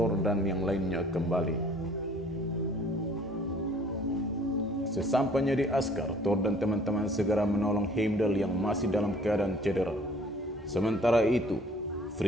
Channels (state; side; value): normal; both; correlation 0.55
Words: dan yang lainnya kembali. Sesampainya di Asgard, Thor dan teman-teman segera menolong Heimdall yang masih dalam keadaan cedera. Sementara itu,